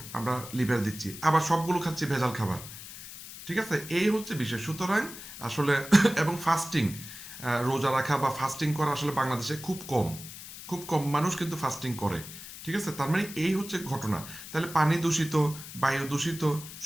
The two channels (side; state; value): left; noise; hiss, 13 dB below the sound